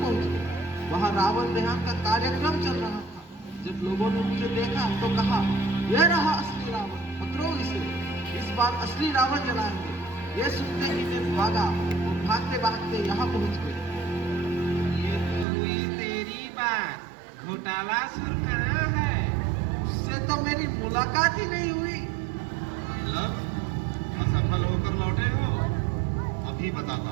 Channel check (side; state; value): left; drops out; at 15.5 s